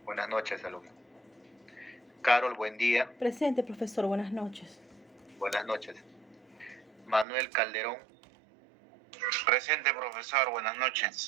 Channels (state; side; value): drops out; left; at 7.2 s